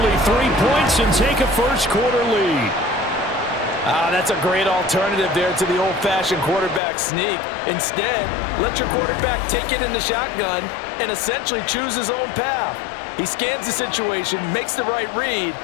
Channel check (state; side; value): drops out; right; at 6.8 s